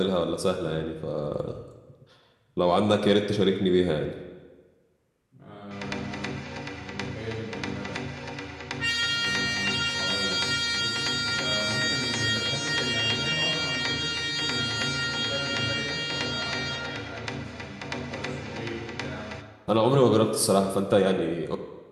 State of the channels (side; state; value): both; identical; correlation 1.00